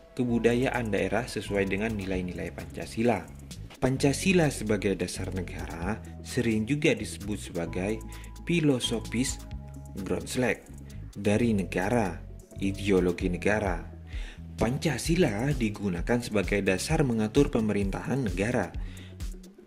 kebudayaan daerah sesuai dengan nilai-nilai Pancasila. Pancasila sebagai dasar negara sering juga disebut sebagai filosofis Grundslag dari negara, ideologi negara. Pancasila digunakan sebagai dasar mengatur pemerintahan negara,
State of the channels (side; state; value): both; identical; correlation 1.00